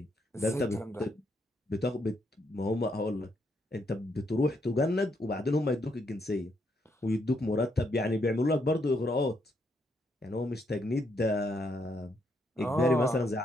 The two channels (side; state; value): both; normal; correlation 0.76